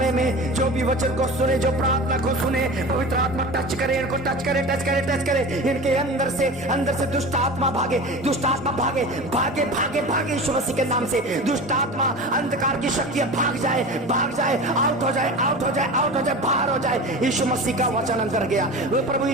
में जो भी वचन को सुने, जो प्रार्थना को सुने, पवित्र आत्मा टच करे, इनको टच करे, टच करे, टच करे, इनके अंदर से दुष्ट आत्मा भागे, दुष्ट आत्मा भागे, भागे भागे भागे यीशु मसीह के नाम से दुष्ट आत्मा, अंधकार की शक्तियां भाग जाए, भाग जाए, आउट हो जाए, आउट हो जाए, आउट हो जाए, बाहर हो जाए। यीशु मसीह का वचन अंदर गया, वो प्रभु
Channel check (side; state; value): both; normal; correlation 0.32